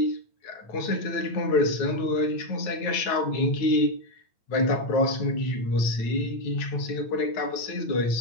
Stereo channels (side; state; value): right; late; 8.9 ms